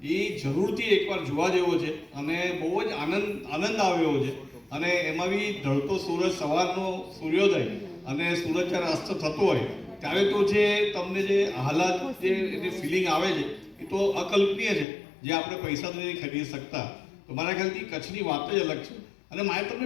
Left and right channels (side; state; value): right; drops out; at 14.9 s